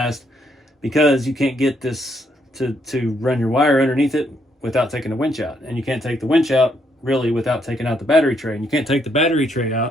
because you can't get this to run your wire underneath it without taking the winch out. And you can't take the winch out really without taking out the battery tray. And you can't take the battery tray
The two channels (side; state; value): both; normal; correlation 0.74